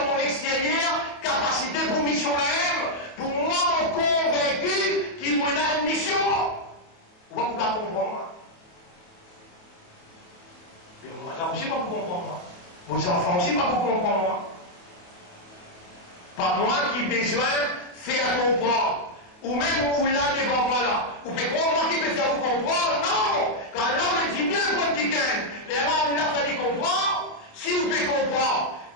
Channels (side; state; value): right; late; 27 ms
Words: mon extérieur, capacité pour mission là-même, pour moi, mon convaincu qu'il m'en a une mission. Vous ne pouvez pas comprendre. Mais moi aussi, pas vous comprendre. Vos enfants aussi, pas vous comprendre. Pas moi qui besoin de faire comprendre. Ou même où là, devant moi là. Ou peut comprendre qui peut faire vous comprendre. Non! Quand là, on dit bien le petit gain. Les gens, là, ça dit comprendre. Si vous pouvez comprendre.